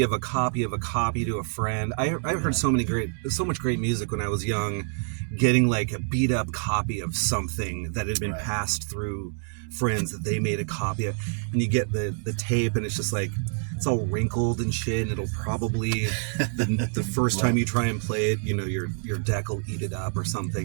of a copy of a copy to a friend. I heard so much great music when I was young, getting like a beat up copy of something that had been passed through friends that they made a copy of, and you get the tape, and it's just like, it's all wrinkled and shit, and it'll probably the first time you try and play it, your deck will eat it up or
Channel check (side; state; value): left; silent; 60 dB below the other